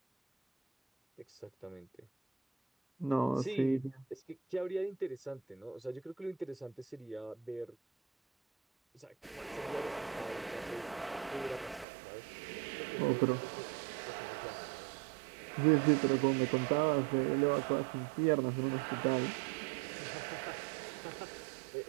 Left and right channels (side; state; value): left; drops out; at 11.9 s